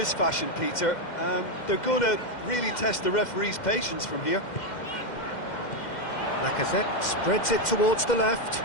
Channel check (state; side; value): late; right; 2.1 ms